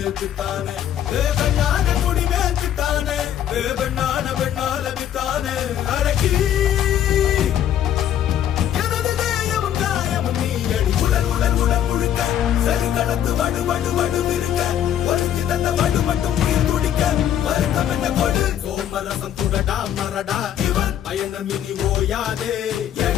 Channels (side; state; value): right; quieter; 10.5 dB